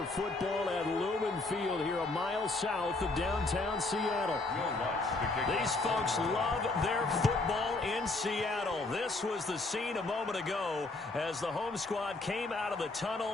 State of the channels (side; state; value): right; quieter; 3.2 dB